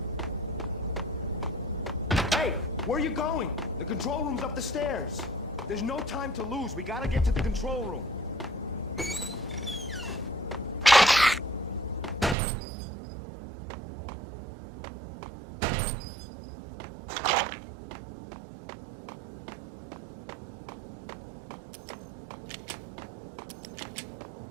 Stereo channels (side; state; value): left; drops out; at 12.4 s